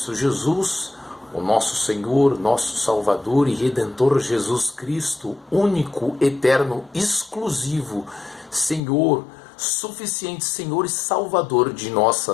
Jesus, o nosso Senhor, nosso Salvador e Redentor Jesus Cristo, único, eterno, exclusivo, Senhor, suficiente Senhor e Salvador de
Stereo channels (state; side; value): drops out; right; at 8.8 s